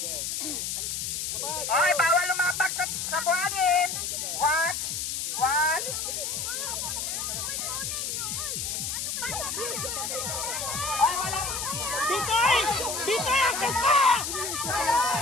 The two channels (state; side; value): noise; left; hiss, 3 dB below the sound